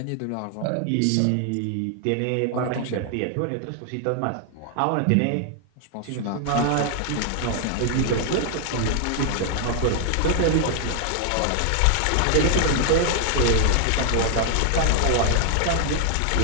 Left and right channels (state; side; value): different; both; correlation 0.00